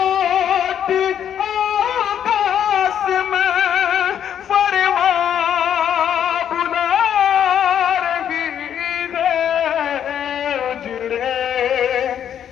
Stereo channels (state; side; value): quieter; right; 9.4 dB